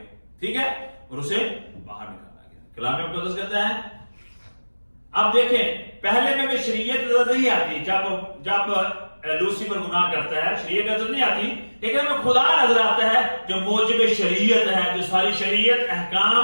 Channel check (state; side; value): inverted; both; correlation -1.00